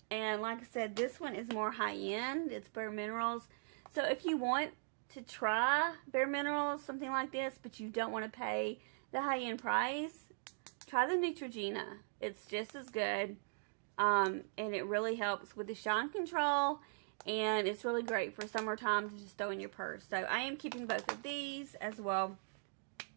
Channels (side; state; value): left; silent; digital silence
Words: And like I said, this one is more high-end. It's Bare Minerals. So if you want to try Bare Minerals, something like this, but you don't want to pay the high-end price, try the Neutrogena. It's just as good. And it really helps with the shine control. And it's really great for summertime to just throw in your purse. So I am keeping both of these as well.